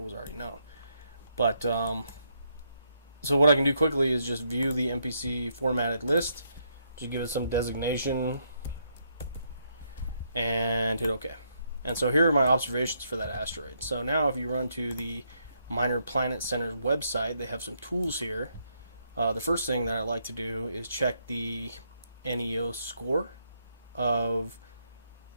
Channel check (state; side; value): inverted; both; correlation -0.75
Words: already known. But, so what I can do quickly is just view the MPC formatted list, just give it some designation, and hit OK. And so here are my observations for that asteroid. So now if you run to the Minor Planet Center website, they have some tools here. The first thing that I like to do is check the NEO score of